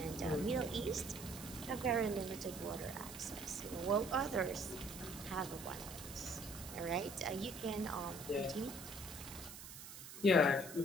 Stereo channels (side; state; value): right; noise; hiss, 12 dB below the sound